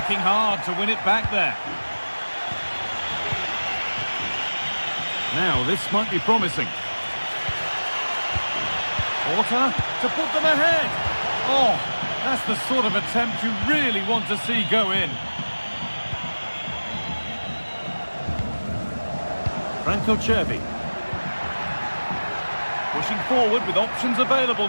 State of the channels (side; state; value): both; inverted; correlation -1.00